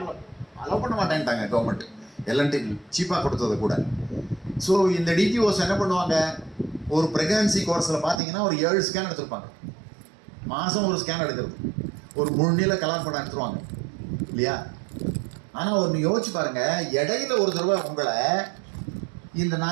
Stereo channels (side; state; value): left; drops out; at 8.2 s